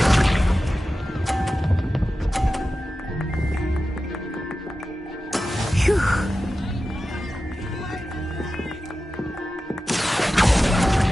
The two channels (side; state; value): both; normal; correlation 0.93